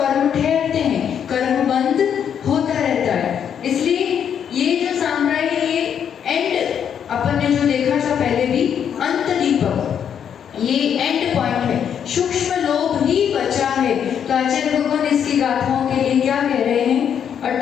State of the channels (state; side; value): quieter; right; 8.4 dB